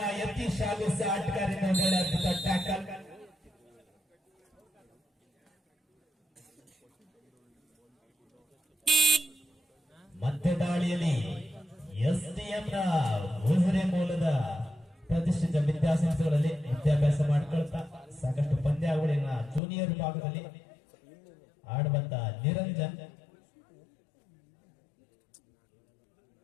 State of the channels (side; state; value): right; drops out; at 19.6 s